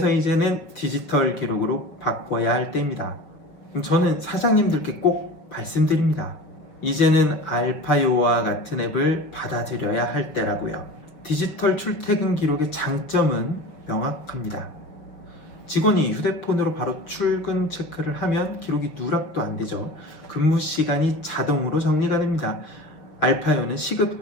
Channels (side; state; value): right; late; 6.0 ms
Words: 이제는 디지털 기록으로 바꿔야 할 때입니다. 저는 사장님들께 꼭 말씀드립니다. 이제는 알파요와 같은 앱을 받아들여야 할 때라고요. 디지털 출퇴근 기록의 장점은 명확합니다. 직원이 휴대폰으로 바로 출근 체크를 하면 기록이 누락도 안 되죠. 근무 시간이 자동으로 정리가 됩니다. 알파요는 시급